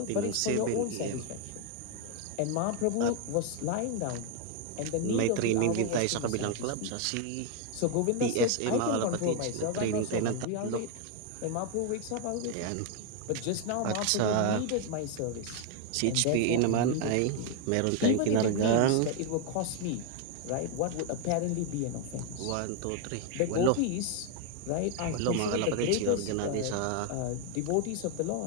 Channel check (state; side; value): different; both; correlation 0.01